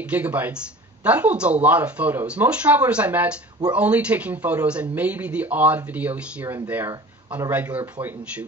gigabytes, that holds a lot of photos. Most travelers I met were only taking photos and maybe the odd video here and there on a regular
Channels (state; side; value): normal; both; correlation 0.41